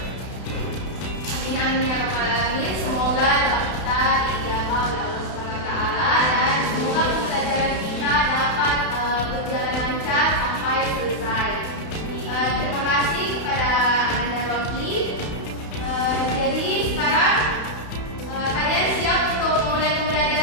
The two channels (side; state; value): right; late; 31 ms